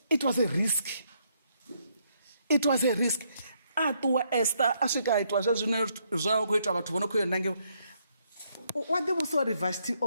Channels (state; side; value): inverted; both; correlation -0.73